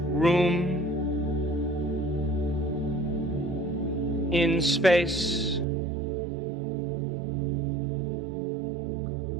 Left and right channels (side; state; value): left; drops out; at 5.7 s